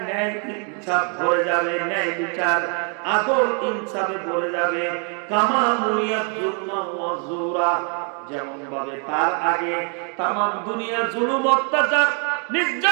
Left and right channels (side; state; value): left; quieter; 39.5 dB